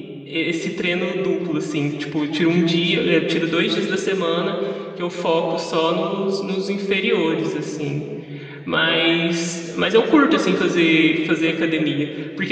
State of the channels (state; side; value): identical; both; correlation 1.00